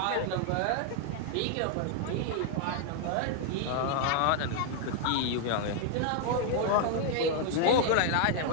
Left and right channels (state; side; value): different; both; correlation 0.00